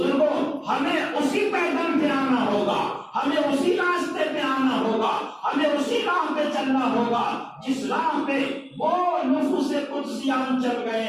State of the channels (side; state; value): both; identical; correlation 1.00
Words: ہمیں اسی پیغام پہ آنا ہوگا، ہمیں اسی راستے پہ آنا ہوگا، ہمیں اسی راہ پہ چلنا ہوگا جس راہ پہ وہ نفوس قدسیان چل گئے